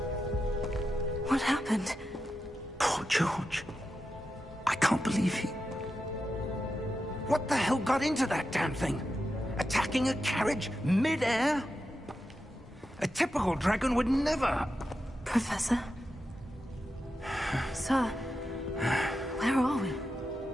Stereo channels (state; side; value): normal; both; correlation 0.89